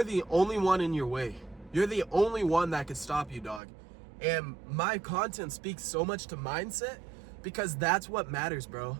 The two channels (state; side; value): drops out; left; at 3.6 s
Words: the only one in your way. You're the only one that could stop you, dog. And my content speaks so much to mindset because that's what matters, bro.